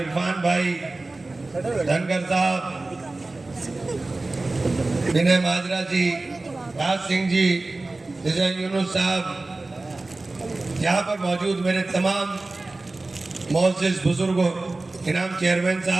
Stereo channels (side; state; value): left; quieter; 3.2 dB